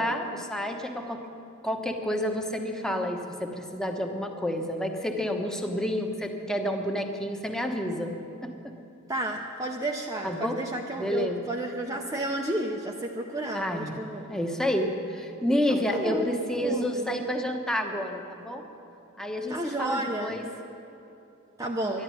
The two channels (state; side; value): normal; both; correlation 0.59